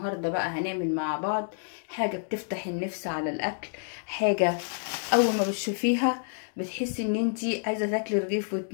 بقى هنعمل مع بعض حاجة بتفتح النفس على الاكل، حاجة اول ما بتشوفيها بتحسي ان انتي عايزة تاكلي رغيف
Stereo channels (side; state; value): right; silent; digital silence